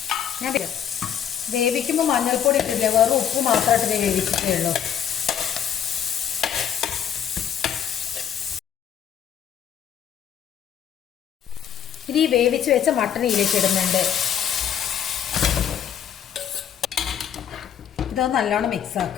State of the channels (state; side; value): quieter; right; 9.1 dB